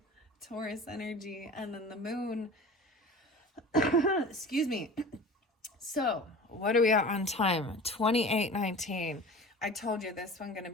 Taurus energy, and then the moon. Excuse me. So, what are we at on time? 28:19. I told you this one's going to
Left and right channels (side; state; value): both; normal; correlation 0.37